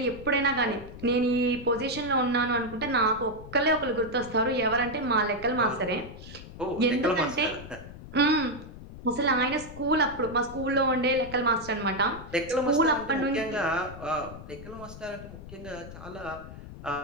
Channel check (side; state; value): left; noise; rumble, 14 dB below the sound